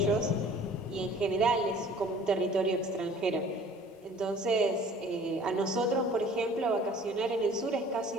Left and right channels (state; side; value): normal; both; correlation 0.50